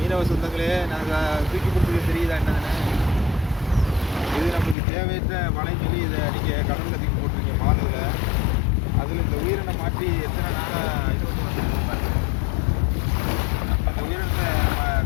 மீனவ சொந்தங்களே, நாங்கள் தூக்கி கொடுத்துக்க தெரியுதா என்னதுன்னு? இது நம்மளுக்கு தேவையற்ற வலைன்னு சொல்லி இதை நீங்கள் கடலில் தூக்கி போட்டிருக்கீங்க மாலுவில். அதில் இந்த உயிரினை மாற்றி எத்தனை நாளாக இது வந்து வந்துருக்கு பாருங்க. நம்ம இந்த உயிரினத்தை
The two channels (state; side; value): drops out; right; at 4.8 s